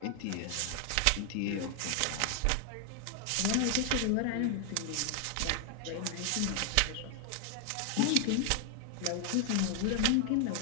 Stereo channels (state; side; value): different; both; correlation 0.00